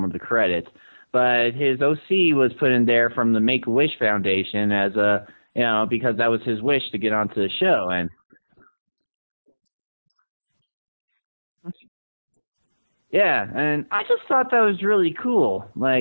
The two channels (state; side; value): inverted; both; correlation -1.00